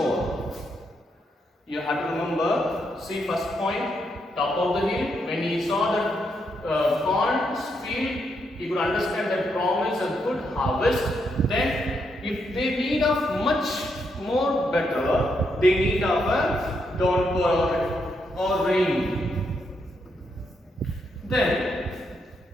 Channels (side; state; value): both; normal; correlation 0.79